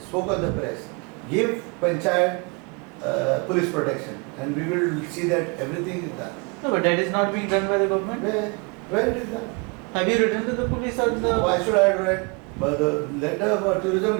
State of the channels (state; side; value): quieter; left; 31.3 dB